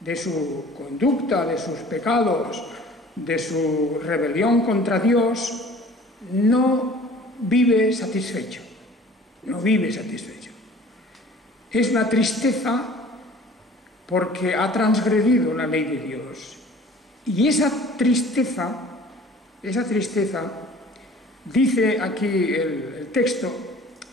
de su conducta, de sus pecados, de su rebelión contra Dios, no vive satisfecho. No vive satisfecho. Es una tristeza porque ha transgredido la ley de Dios. Y esa tristeza, dice aquí el texto,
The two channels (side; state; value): both; normal; correlation 0.48